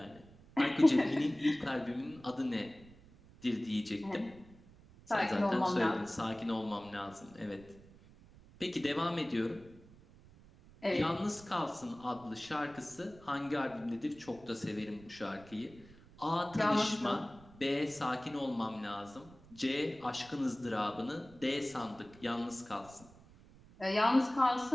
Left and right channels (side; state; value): right; noise; rumble, 23 dB below the sound